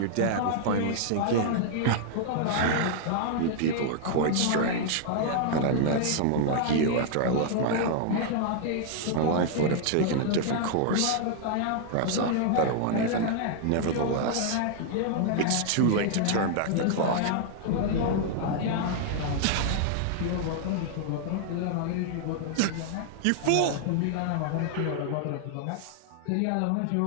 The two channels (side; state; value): both; different; correlation -0.01